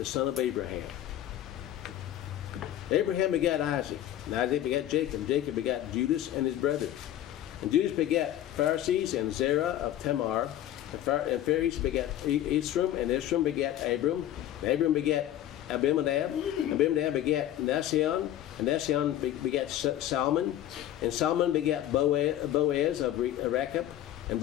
son of Abraham. Abraham begat Isaac, and Isaac begat Jacob, and Jacob begat Judas and his brethren. And Judas begat Pharisees and Zerah of Tamar, and Phares begat Esrom, and Esrom begat Abram, and Abram begat Abimadab, Abimadab begat Nasion, and Nasion begat Salmon, and Salmon begat Boaz of Rachab, and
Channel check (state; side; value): quieter; right; 12.2 dB